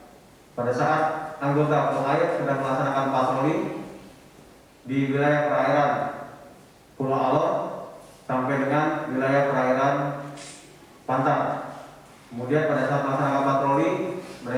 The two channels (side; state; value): both; identical; correlation 1.00